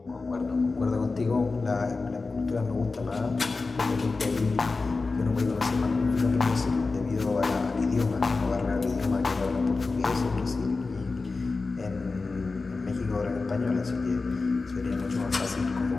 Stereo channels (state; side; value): quieter; right; 3.9 dB